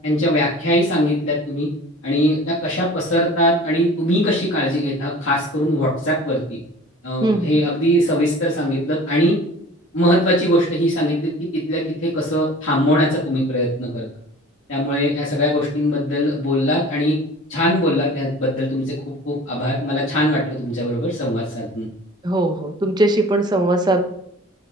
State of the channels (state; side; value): normal; both; correlation 0.44